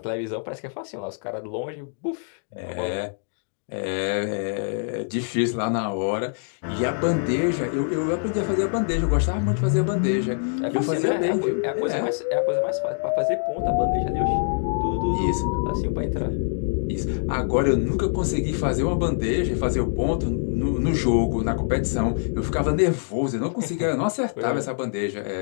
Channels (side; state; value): right; silent; digital silence